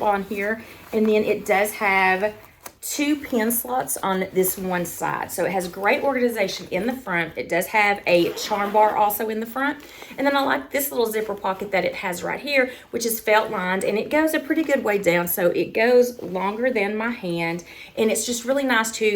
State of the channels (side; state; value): both; identical; correlation 1.00